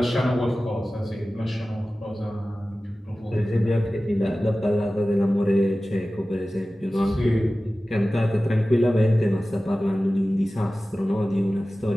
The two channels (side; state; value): both; normal; correlation 0.96